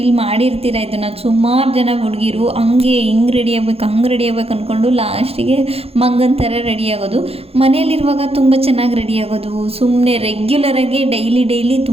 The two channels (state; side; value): late; left; 0.29 ms